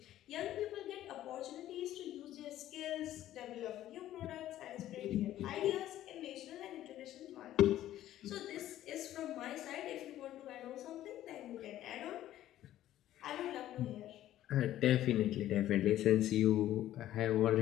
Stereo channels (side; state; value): right; quieter; 13.2 dB